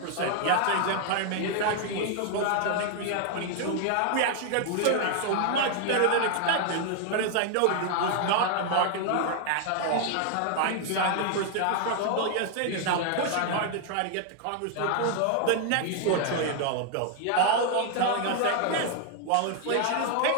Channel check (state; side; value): different; both; correlation 0.00